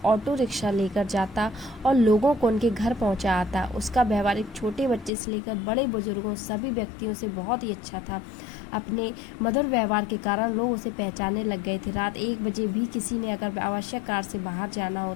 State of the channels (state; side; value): drops out; right; at 5.1 s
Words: ऑटो रिक्शा लेकर जाता और लोगों को उनके घर पहुंचा आता। उसका व्यवहार एक छोटे बच्चे से लेकर बड़े बुजुर्गों सभी व्यक्तियों से बहुत ही अच्छा था। अपने मधुर व्यवहार के कारण लोग उसे पहचानने लग गए थे। रात 1 बजे भी किसी ने अगर आवश्यक कार्य से बाहर जाना